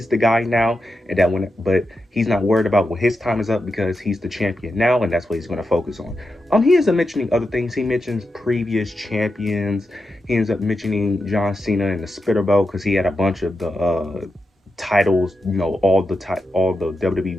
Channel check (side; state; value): both; normal; correlation 0.88